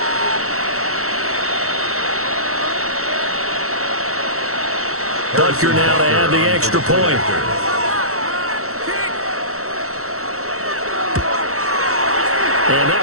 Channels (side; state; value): left; late; 0.64 ms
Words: Butker now to add the extra point. And